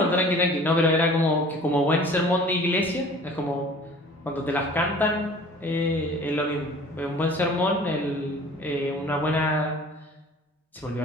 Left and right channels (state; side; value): normal; both; correlation 0.47